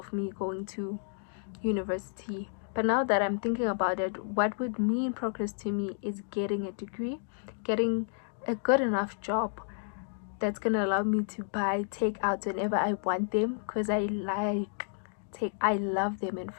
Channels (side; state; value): right; silent; digital silence